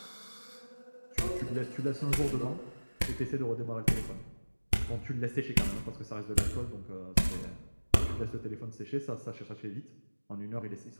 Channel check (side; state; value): both; inverted; correlation -1.00